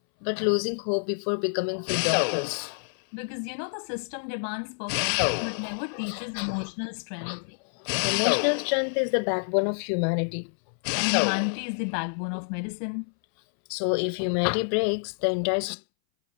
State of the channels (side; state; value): right; silent; 60 dB below the other